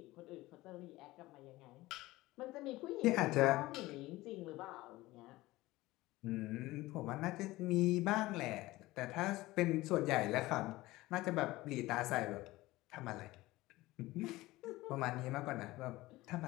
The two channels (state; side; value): quieter; right; 18.8 dB